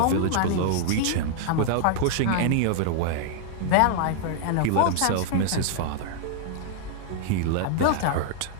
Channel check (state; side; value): different; both; correlation 0.00